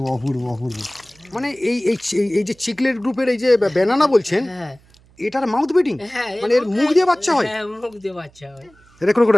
অপূর্ব অপূর্ব। মানে এই এই এই যে চিকলেট গ্রুপের এই যে ব্যানানা বলছেন, হ্যাঁ এটার মাউথ ব্রিডিং, হ্যাঁ, মানে এর মুখ দিয়ে বাচ্চা হয়? হ্যাঁ, মুখ দিয়ে বাচ্চা হয়। এটা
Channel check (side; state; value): right; noise; hum, 29 dB below the sound